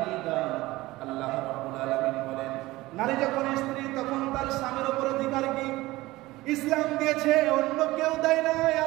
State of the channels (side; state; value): left; quieter; 18.9 dB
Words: আল্লাহ রাব্বুল আলামিন বলেন নারী যখন স্ত্রী তখন তার স্বামীর উপর অধিকার কি ইসলাম দিয়েছে, অন্য কেউ দেয় নাই।